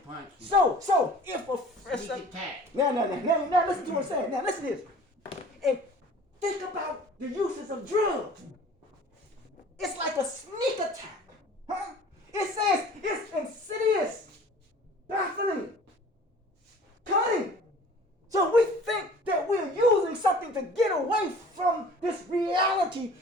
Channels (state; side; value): normal; both; correlation 0.47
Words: you. So if a Sneak attack. now listen to what I'm saying. Now listen to this. And think about the uses of drugs. It's like a sneak attack. Huh? It says it's insidious, baffling, cunning. So we think that we're using something to get away from this reality.